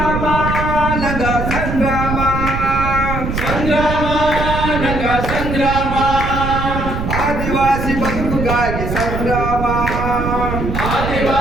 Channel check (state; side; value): noise; right; rumble, 3 dB below the sound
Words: ನಗ ಸಂಗ್ರಾಮ ಸಂಗ್ರಾಮ ನಗ ಸಂಗ್ರಾಮ ಆದಿವಾಸಿ ಬದುಕಿಗಾಗಿ ಸಂಗ್ರಾಮ